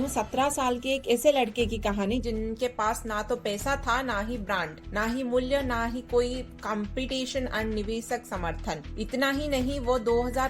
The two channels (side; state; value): both; identical; correlation 1.00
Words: 17 साल के एक ऐसे लड़के की कहानी जिनके पास ना तो पैसा था, ना ही ब्रांड, ना ही मूल्य, ना ही कोई कंपटीशन और निवेशक समर्थन। इतना ही नहीं, वो